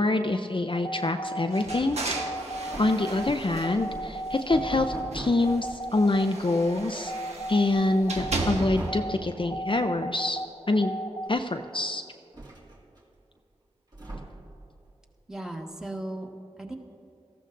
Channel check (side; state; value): both; normal; correlation 0.78